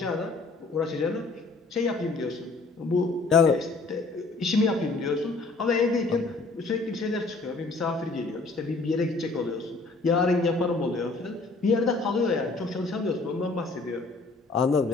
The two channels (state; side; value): quieter; right; 3.5 dB